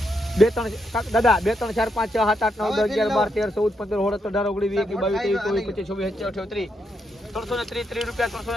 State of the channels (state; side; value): normal; both; correlation 0.80